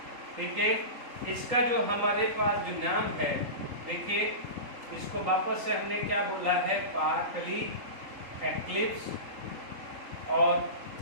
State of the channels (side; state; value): left; late; 3.8 ms